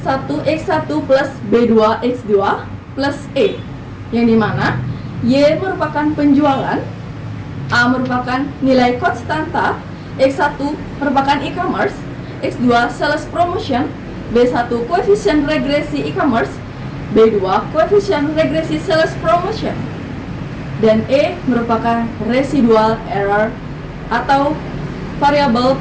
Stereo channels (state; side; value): identical; both; correlation 1.00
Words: plus B2x2 plus E, yang dimana Y merupakan penjualan, A merupakan nilai konstanta, X1 merupakan e-commerce, X2 sales promotion, B1 koefisien regresi e-commerce, B2 koefisien regresi sales promotion, dan E merupakan residual error atau variabel